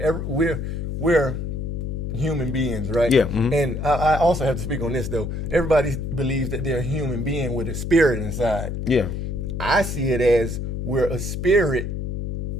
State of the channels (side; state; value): left; noise; hum, 4 dB below the sound